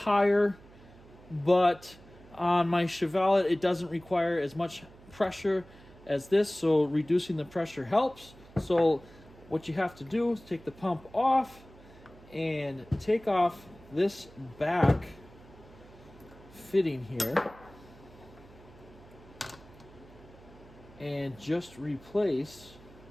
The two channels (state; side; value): noise; right; hum, 22 dB below the sound